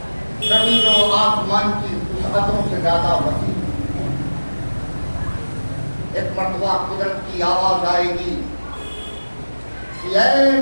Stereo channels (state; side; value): inverted; both; correlation -1.00